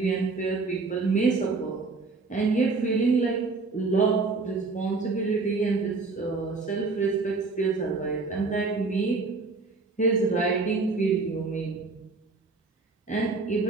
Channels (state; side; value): quieter; left; 4.0 dB